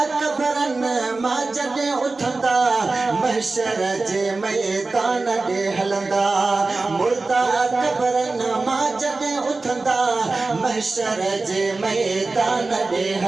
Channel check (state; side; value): quieter; left; 3.6 dB